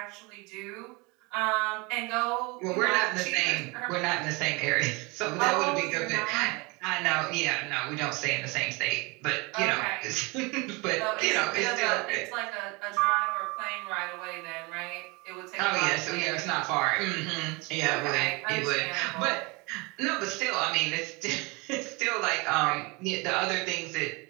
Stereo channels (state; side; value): quieter; left; 27.0 dB